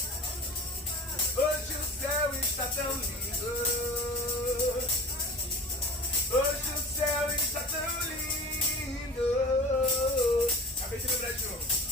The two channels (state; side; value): normal; both; correlation 0.39